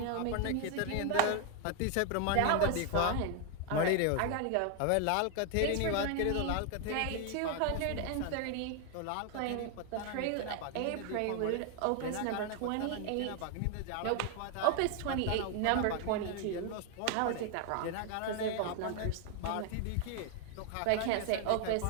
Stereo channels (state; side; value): different; both; correlation 0.00